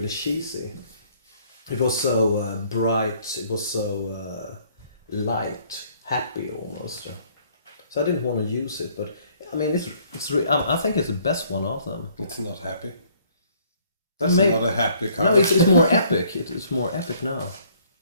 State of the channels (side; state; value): both; inverted; correlation -0.62